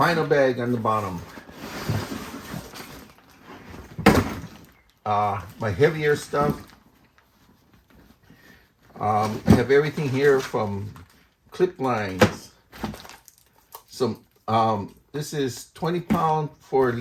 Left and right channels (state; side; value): identical; both; correlation 1.00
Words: bag on the bottom. My heavier stuff. I have everything here from clip lines. Some this is 20 pound for